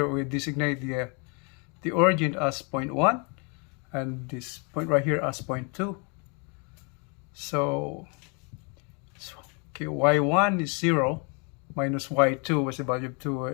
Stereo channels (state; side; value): quieter; right; 34.5 dB